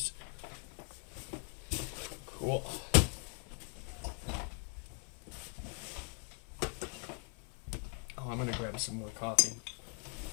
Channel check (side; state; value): right; quieter; 37.3 dB